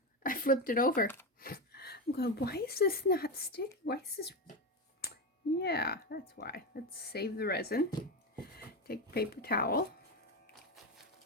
I flipped it over. I'm going, why is this not sticking? Why is this? Yeah, that's why. Let's save the resin. Take a paper towel.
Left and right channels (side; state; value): both; normal; correlation 0.15